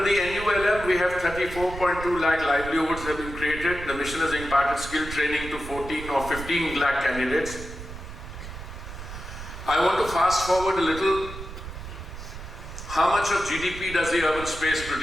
the NULM, we have 34.2 lakh livelihoods have been created. The mission has imparted skill training to 14 or 15 lakh candidates. I want to fast forward a little. How much of GDP does the urban space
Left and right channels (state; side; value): noise; right; rumble, 11 dB below the sound